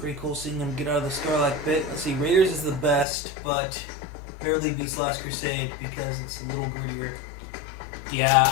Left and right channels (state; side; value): drops out; right; at 3.1 s